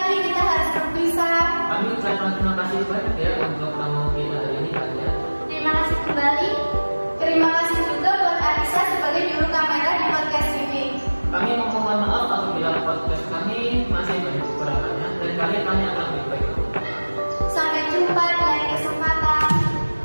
kita harus berpisah. Kami ucapkan terima kasih banyak ya untuk tamu kita hari ini, Kak ya. Terima kasih kembali. Terima kasih juga buat Aisyah sebagai juru kamera di podcast ini. Kami mohon maaf apabila podcast kami masih banyak kekurangannya dan kalian akan lebih baik. Sampai jumpa di lain kesempatan.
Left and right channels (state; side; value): inverted; both; correlation -1.00